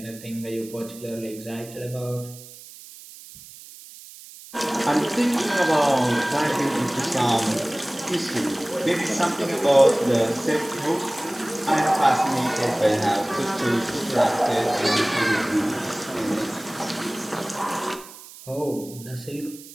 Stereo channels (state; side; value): noise; right; hiss, 18 dB below the sound